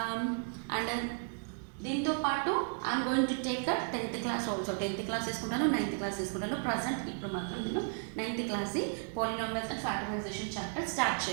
అండ్ దీంతో పాటు I'm going to take 10th class also. 10th class తీసుకుంటాను, 9th క్లాస్ తీసుకుంటాను. ప్రజెంట్ ఇప్పుడు మాత్రం నేను 9th class polynomials and factorization chapter start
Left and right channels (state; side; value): silent; left; 55 dB below the other